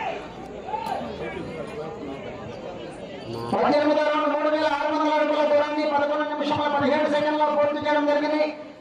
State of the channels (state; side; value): identical; both; correlation 1.00